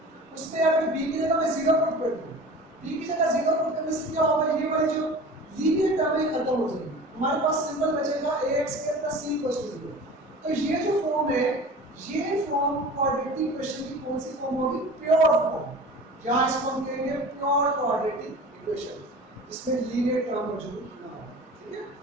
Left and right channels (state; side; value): normal; both; correlation 0.39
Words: उसमें अगर b की जगह मैं 0 पुट कर दूं, b की जगह 0 पुट करने से क्या होगा, ये वाली जो लीनियर टर्म है खत्म हो जाएगी, हमारे पास सिंबल बचेगा ax plus c equals to 0। तो ये जो फॉर्म है, ये फॉर्म क्वाड्रेटिक क्वेश्चन की कौन सी फॉर्म होगी, प्योर फॉर्म। क्या इसको हम कहेंगे, प्योर क्वाड्रेटिक इक्वेशन, जिसमें लीनियर टर्म मौजूद ना हो। ठीक है,